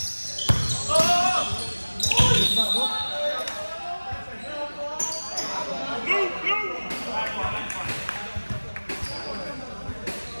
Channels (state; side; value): inverted; both; correlation -1.00